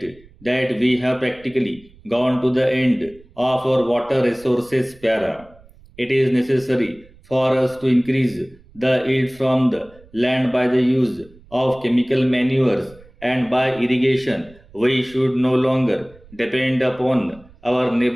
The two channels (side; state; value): right; noise; rumble, 25 dB below the sound